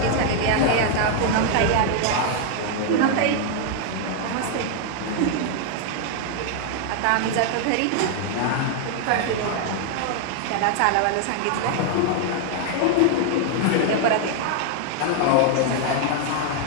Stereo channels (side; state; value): both; different; correlation 0.00